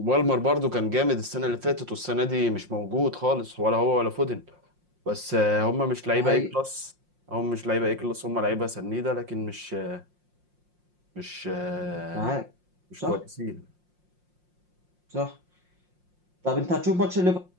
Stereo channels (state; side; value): late; left; 5.6 ms